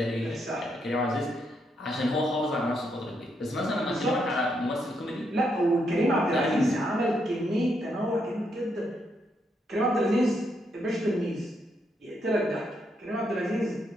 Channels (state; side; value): normal; both; correlation 0.78